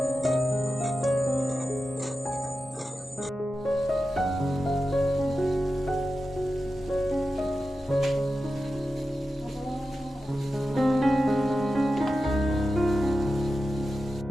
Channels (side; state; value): both; normal; correlation 0.91